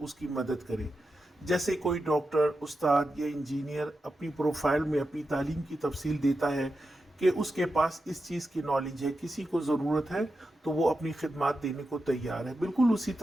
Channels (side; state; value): both; normal; correlation 0.89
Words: کی مدد کریں۔ جیسے کوئی ڈاکٹر، استاد یا انجینئر اپنی پروفائل میں اپنی تعلیم کی تفصیل دیتا ہے کہ اس کے پاس اس چیز کی نالج ہے، کسی کو ضرورت ہے تو وہ اپنی خدمات دینے کو تیار ہے۔ بالکل اسی